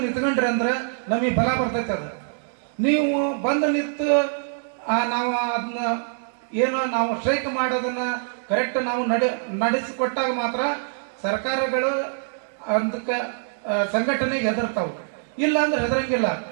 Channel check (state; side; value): silent; left; digital silence